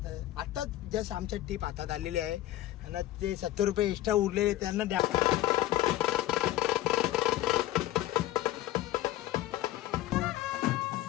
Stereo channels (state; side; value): quieter; right; 14.8 dB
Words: आता जस्ट आमच्या टीप हातात आलेली आहे आणि ते 70 रुपये एक्स्ट्रा उरलेले त्यांना द्या.